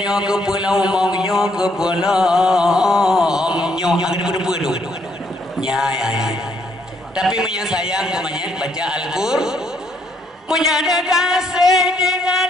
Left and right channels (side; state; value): both; normal; correlation 0.71